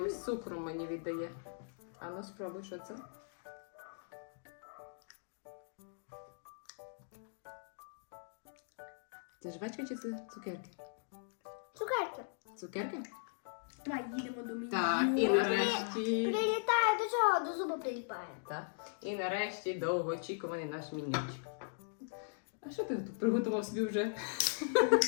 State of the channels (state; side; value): silent; right; digital silence